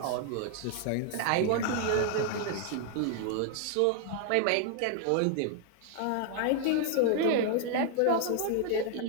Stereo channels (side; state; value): both; different; correlation 0.00